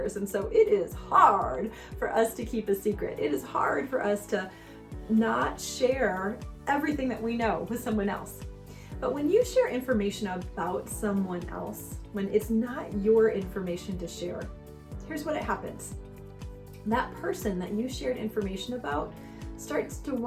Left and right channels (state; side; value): identical; both; correlation 1.00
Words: And so it is hard for us to keep a secret. It is hard for us to not share everything that we know with someone else. But when you share information about someone else, when it's not your information to share, here's what happens. That person that you shared information about starts to